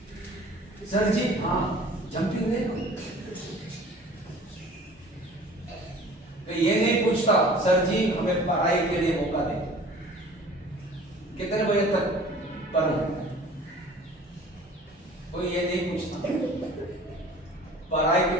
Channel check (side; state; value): both; normal; correlation 0.47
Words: सर जी हाँ जंपिंग ले लो। तो ये नहीं पूछता सर जी हमें पढ़ाई के लिए मौका दें, कितने बजे तक पढ़ूं, कोई ये नहीं पूछता। पढ़ाई की